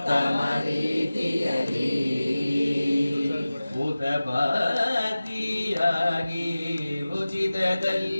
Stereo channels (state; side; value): inverted; both; correlation -0.97